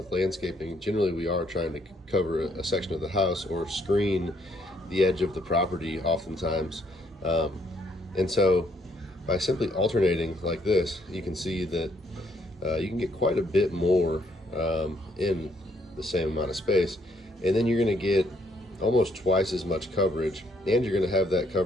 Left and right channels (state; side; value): normal; both; correlation 0.70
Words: landscaping generally we are trying to cover a section of the house or screen the edge of the property oftentimes. And so by simply alternating like this, you can see that you can get quite a bit more in the same amount of space, and then you're going to get almost twice as much coverage, and you're going to have that